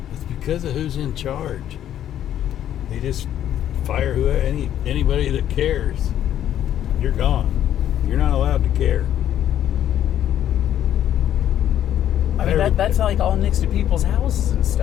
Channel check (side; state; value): right; quieter; 11.0 dB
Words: it's because of who's in charge. They just fire anybody that cares. You're gone. You're not allowed to care. I mean, that's like all next to people's houses and